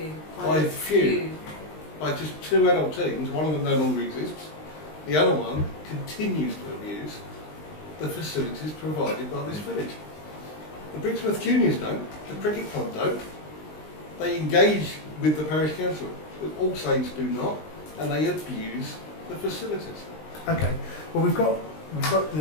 By the few. By just 2 adult teams, one of them no longer exists, the other one continues to abuse the facilities provided by this village. The Brixworth Juniors don't, the cricket club don't. They engage with the parish council, but All Saints do not, and they abuse the facilities. Okay. Well, we've got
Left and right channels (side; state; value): right; late; 20 ms